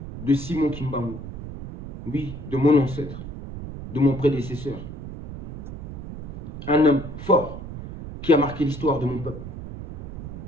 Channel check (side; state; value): right; noise; rumble, 10 dB below the sound